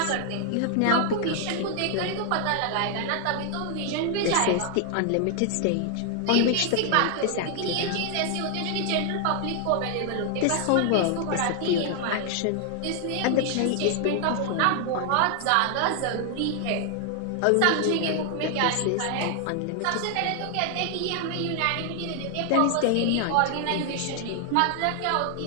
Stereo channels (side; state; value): both; different; correlation 0.00